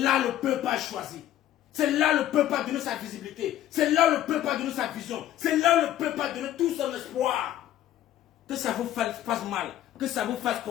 le peuple a choisi. C'est là le peuple a donné sa visibilité. C'est là le peuple a donné sa vision. C'est là le peuple a donné tout son espoir. Que ça vous fasse mal. Que ça vous fasse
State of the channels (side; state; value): right; quieter; 12.4 dB